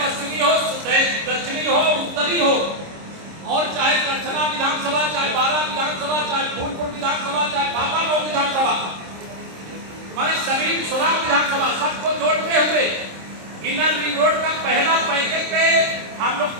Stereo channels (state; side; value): late; left; 26 ms